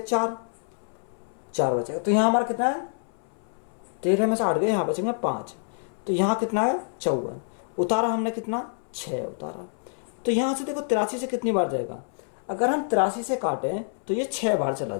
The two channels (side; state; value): right; silent; 60 dB below the other